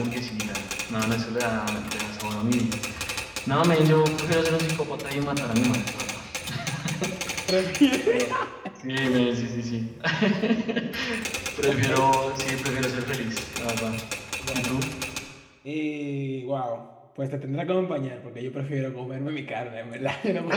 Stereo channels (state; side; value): identical; both; correlation 1.00